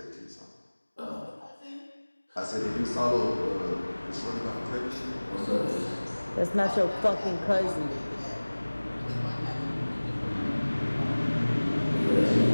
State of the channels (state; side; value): inverted; both; correlation -1.00